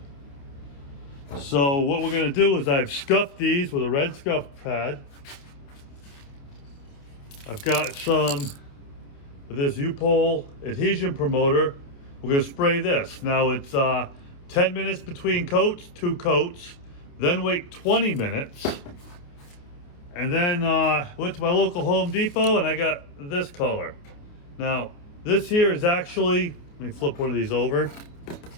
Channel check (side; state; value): right; late; 28 ms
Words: So what we're going to do is I've scuffed these with a red scuff pad. I've got some of this U-pole adhesion promoter. We're going to spray this. Now it's 10 minutes between coats, 2 coats, then wait 20 minutes. And then went to my local Home Depot and I got this color. Now this here is actually, let me flip one of these over.